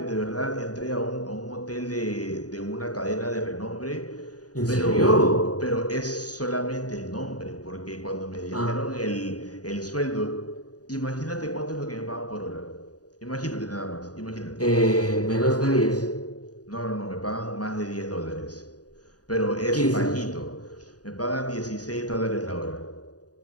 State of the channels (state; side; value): late; right; 0.68 ms